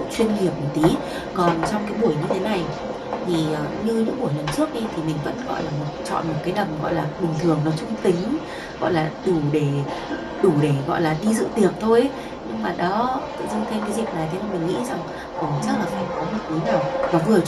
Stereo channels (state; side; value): identical; both; correlation 1.00